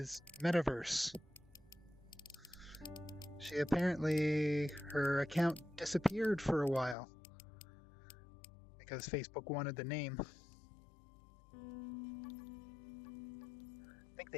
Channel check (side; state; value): right; drops out; at 7.0 s